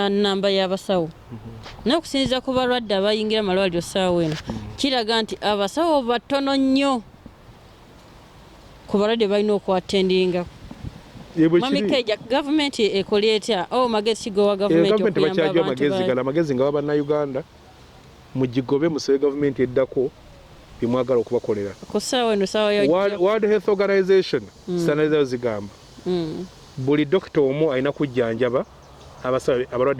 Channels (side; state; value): both; identical; correlation 1.00